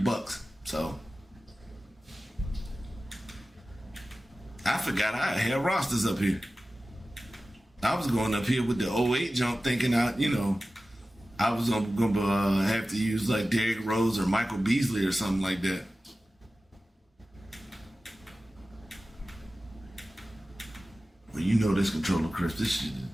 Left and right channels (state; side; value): normal; both; correlation 0.95